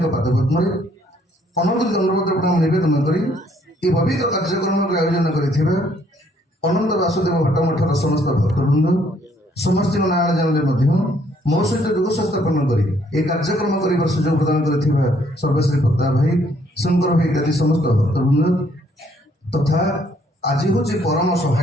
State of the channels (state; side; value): normal; both; correlation 0.66